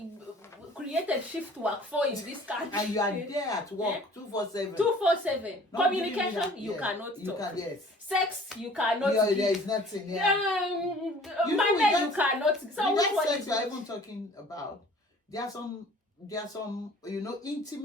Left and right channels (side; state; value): both; normal; correlation 0.50